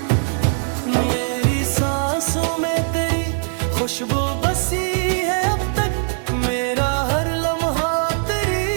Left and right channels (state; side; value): silent; left; 56 dB below the other